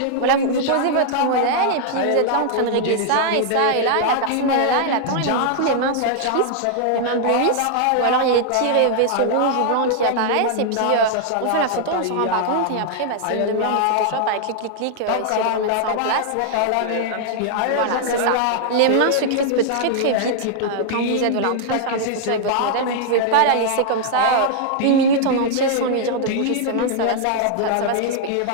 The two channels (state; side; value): different; both; correlation -0.01